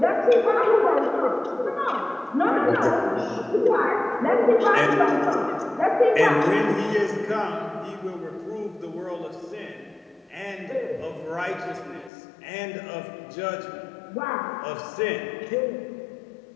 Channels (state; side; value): drops out; right; at 12.1 s